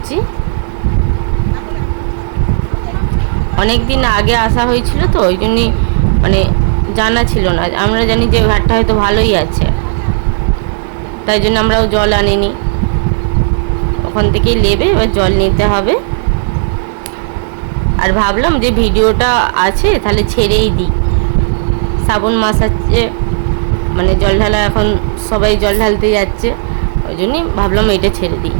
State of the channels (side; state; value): left; silent; digital silence